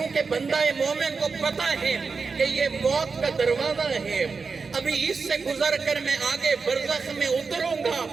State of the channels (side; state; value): left; quieter; 4.8 dB